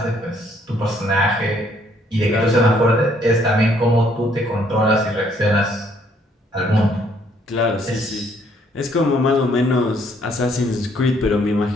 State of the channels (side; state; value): both; normal; correlation 0.66